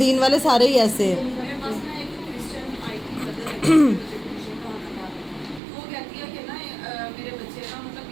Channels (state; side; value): drops out; left; at 5.6 s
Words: والے سارے ہی ایسے ہیں. میرے پاس نا ایک کرسچن آئی تھی مدر وہ کہتی ہے کہ نا میرے بچے نا مطلب